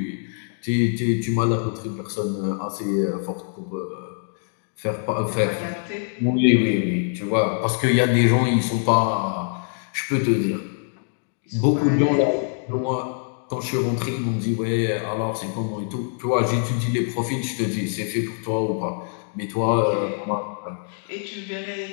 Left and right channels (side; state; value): right; silent; 63 dB below the other